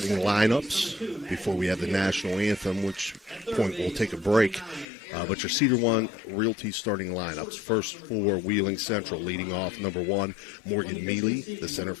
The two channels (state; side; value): drops out; right; at 4.9 s